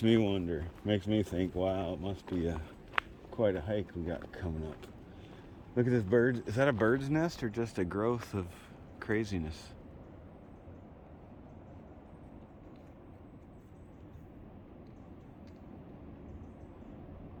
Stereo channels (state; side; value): identical; both; correlation 1.00